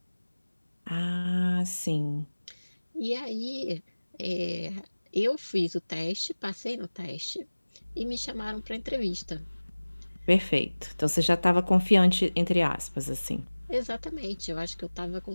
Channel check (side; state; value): both; inverted; correlation -1.00